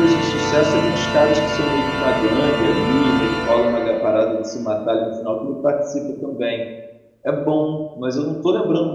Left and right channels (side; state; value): both; identical; correlation 1.00